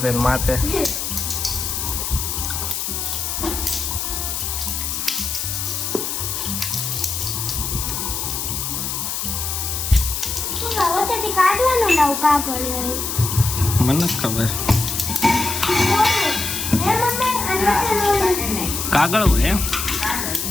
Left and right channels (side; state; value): left; noise; hiss, 3 dB below the sound